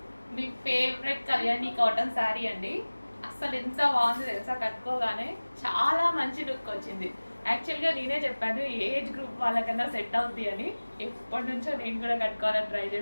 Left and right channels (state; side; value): inverted; both; correlation -1.00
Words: మీ favourite Kalyani cotton sari అండి. అస్సలు ఎంత బాగుంది తెలుసా, కట్టుకోగానే చాలా మంచి లుక్ వచ్చింది. యాక్చువల్గా నేనే చెప్పాను ఏజ్ గ్రూప్ వాళ్ళకన్నా సెట్ అవుద్ది అని. ఎప్పటి నుంచో నేను కూడా కట్టుకోవాలని ట్రై